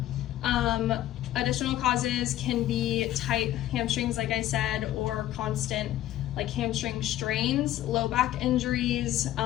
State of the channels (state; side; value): quieter; right; 13.6 dB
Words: Additional causes can be tight hamstrings, like I said, or constant like hamstring strains, low back injuries,